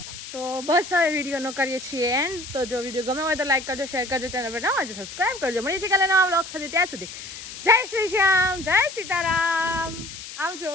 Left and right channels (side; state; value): left; noise; hiss, 12 dB below the sound